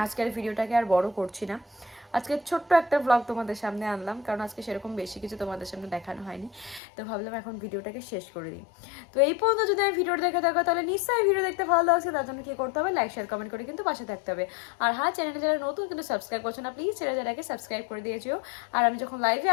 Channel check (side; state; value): right; drops out; at 6.8 s